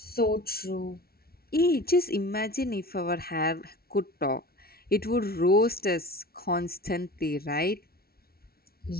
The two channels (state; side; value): late; right; 0.44 ms